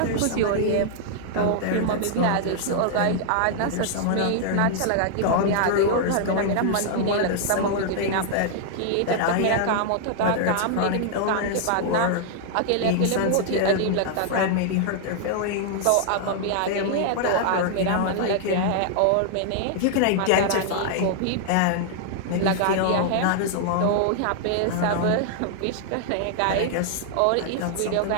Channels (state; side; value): different; both; correlation -0.01